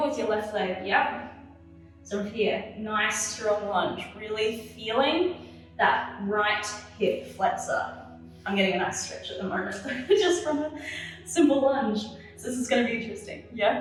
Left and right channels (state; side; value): identical; both; correlation 1.00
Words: with your left leg, yep. So here, nice strong lunge, really feeling that right hip flexor. I'm getting a nice stretch at the moment, just from a simple lunge. So this is gonna be interesting,